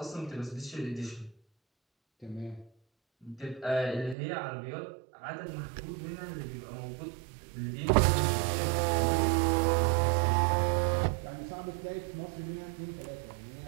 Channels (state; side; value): drops out; left; at 4.2 s